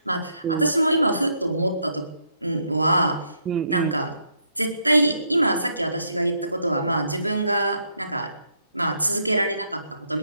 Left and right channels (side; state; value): both; inverted; correlation -0.75